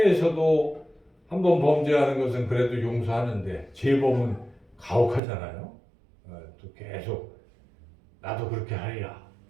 한 번 범죄하는 것은 그래도 용서하는데 재범은 가혹하잖아요. 또 계속 나도 그렇게 하리라.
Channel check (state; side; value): drops out; left; at 5.2 s